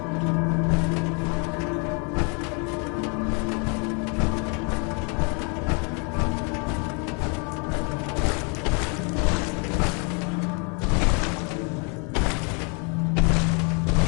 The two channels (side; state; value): right; quieter; 35.7 dB